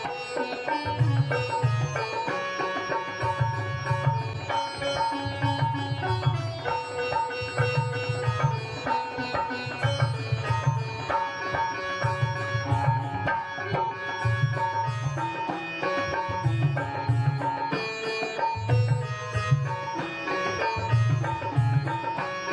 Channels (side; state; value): both; identical; correlation 1.00